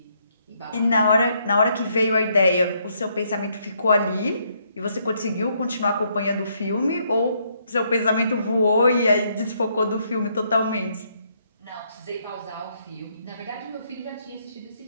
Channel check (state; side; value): inverted; both; correlation -0.73